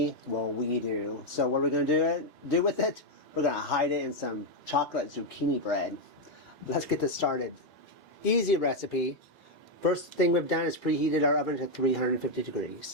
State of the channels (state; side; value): normal; both; correlation 0.02